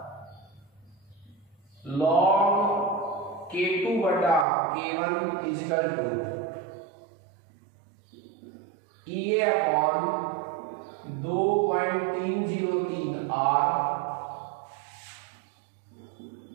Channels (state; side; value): drops out; left; at 4.5 s